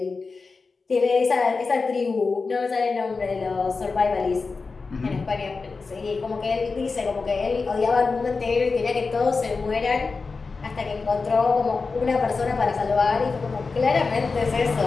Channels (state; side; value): quieter; right; 4.3 dB